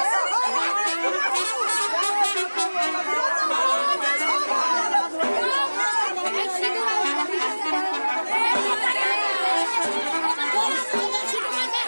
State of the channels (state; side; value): inverted; both; correlation -1.00